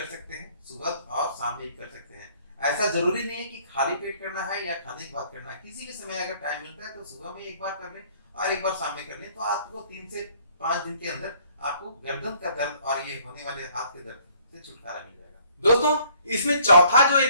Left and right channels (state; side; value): inverted; both; correlation -0.60